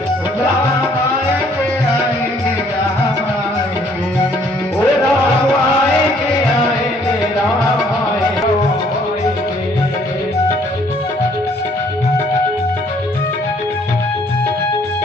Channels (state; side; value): normal; both; correlation 0.63